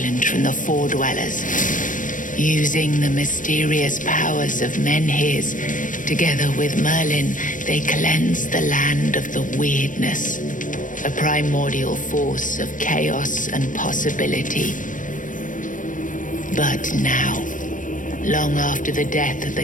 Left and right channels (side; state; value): right; late; 0.38 ms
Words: from the Four Dwellers. Using the mysterious powers of Menhirs, together with Merlin, they cleansed the land of the weirdness, a primordial force of chaos and possibility. But now, long after the death of